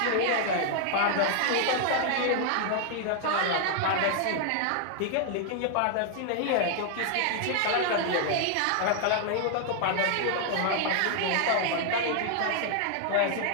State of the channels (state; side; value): different; both; correlation 0.00